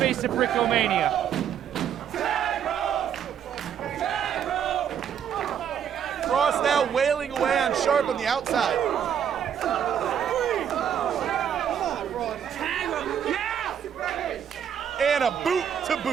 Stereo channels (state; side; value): quieter; left; 8.8 dB